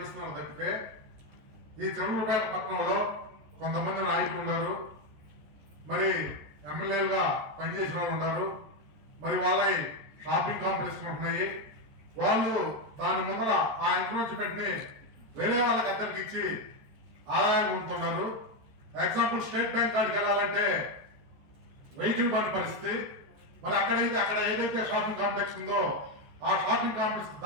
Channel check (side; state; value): left; late; 14 ms